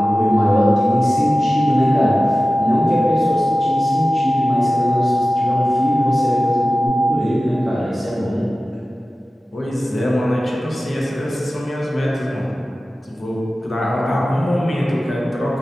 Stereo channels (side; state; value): both; normal; correlation 0.95